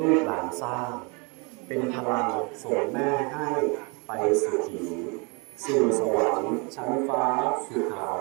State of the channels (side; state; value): left; quieter; 31.2 dB